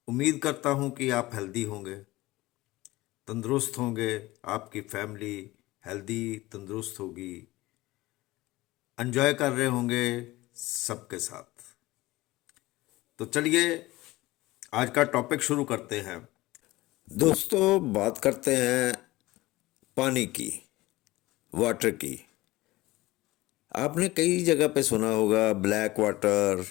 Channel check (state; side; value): quieter; right; 19.0 dB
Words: उम्मीद करता हूं कि आप हेल्दी होंगे, तंदुरुस्त होंगे, आपकी फैमिली हेल्दी तंदुरुस्त होगी, एंजॉय कर रहे होंगे सबके साथ। तो चलिए आज का टॉपिक शुरू करते हैं। दोस्तों, बात करते हैं पानी की, वाटर की। आपने कई जगह पे सुना होगा ब्लैक वाटर